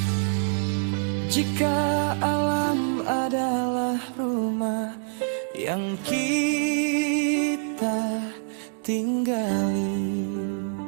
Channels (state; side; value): silent; left; digital silence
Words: Jika alam adalah rumah yang kita tinggali,